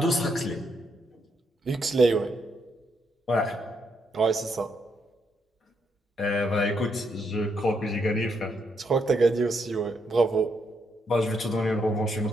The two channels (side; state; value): both; normal; correlation 0.77